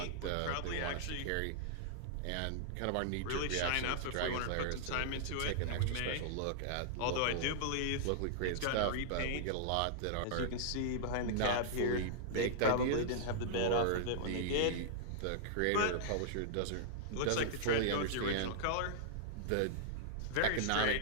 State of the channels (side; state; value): both; different; correlation -0.02